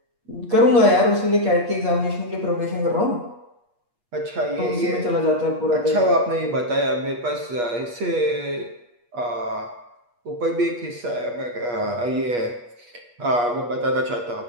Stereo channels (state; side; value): late; left; 8.4 ms